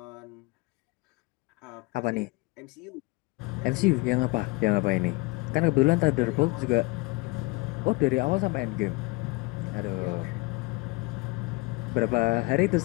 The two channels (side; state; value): right; quieter; 24.3 dB